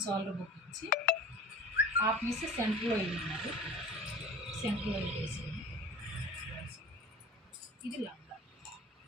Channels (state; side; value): normal; both; correlation 0.40